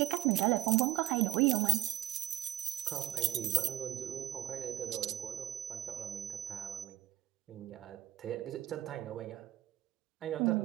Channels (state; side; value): quieter; left; 14.0 dB